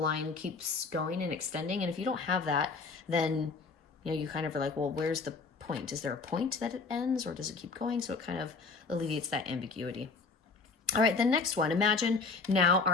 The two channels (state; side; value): quieter; right; 4.4 dB